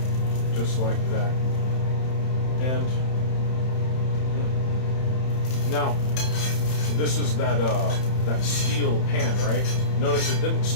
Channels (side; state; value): right; late; 31 ms